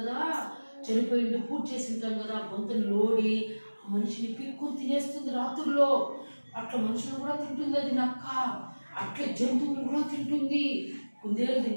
చనిపోయింది పూజ చేసి ఉంటాం కదా, గొంతులు లోడి ఆ మనిషిని పిక్కుని తినేస్తుంది రాత్రుల్లో. అట్లా మనుషులు కూడా తింటుంది అది నక్క. అట్లా జంతువులు కూడా తింటుంది. కుందేలు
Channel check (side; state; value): both; inverted; correlation -1.00